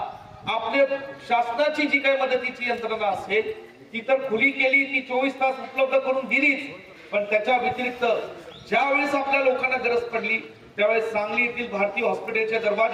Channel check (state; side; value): identical; both; correlation 1.00